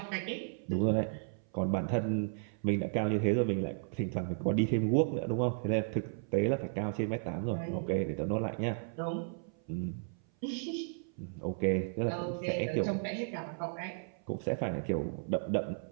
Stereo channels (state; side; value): silent; left; 55 dB below the other